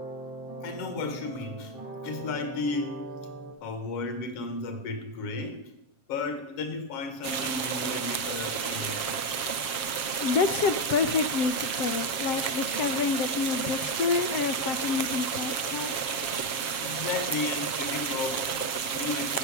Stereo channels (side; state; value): right; late; 7.3 ms